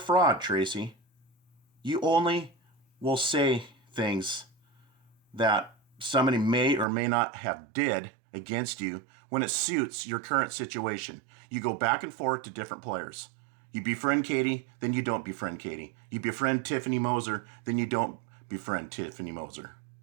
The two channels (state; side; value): drops out; left; at 6.9 s